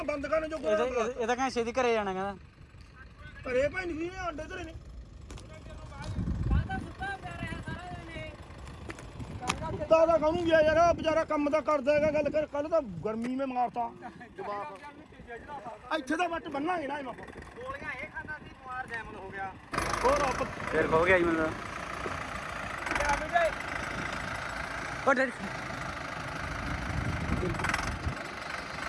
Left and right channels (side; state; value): both; identical; correlation 1.00